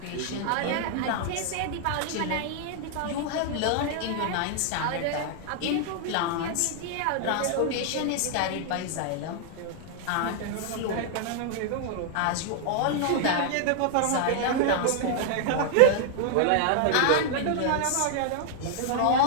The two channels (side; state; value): both; different; correlation 0.00